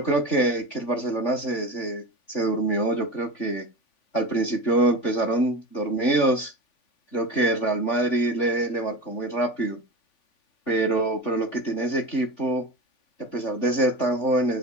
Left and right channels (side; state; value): right; late; 3.5 ms